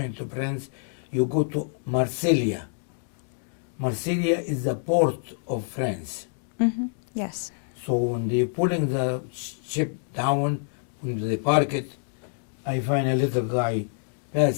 to France, you go to Marseille. Marseille is the port of France. yes. So when they pulling the ship down, when they park it, I find a little guy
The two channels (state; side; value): silent; right; digital silence